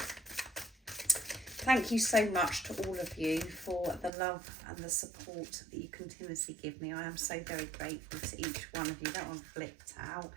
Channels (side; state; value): left; drops out; at 4.1 s